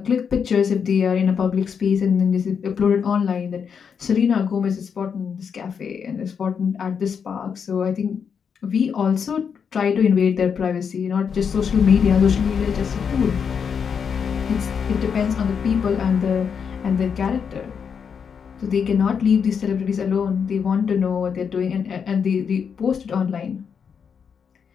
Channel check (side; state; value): right; quieter; 6.8 dB